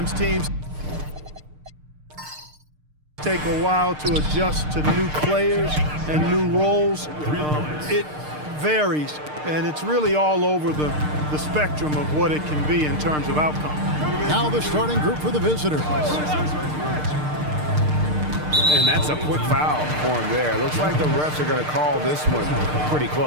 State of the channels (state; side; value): late; left; 6.6 ms